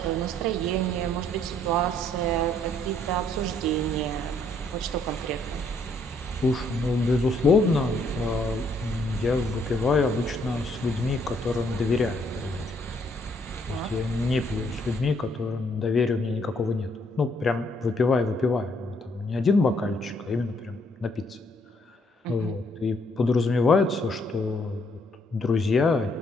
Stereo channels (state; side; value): normal; both; correlation 0.69